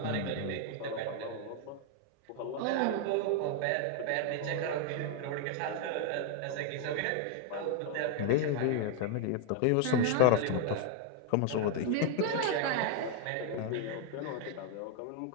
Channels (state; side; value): different; both; correlation 0.00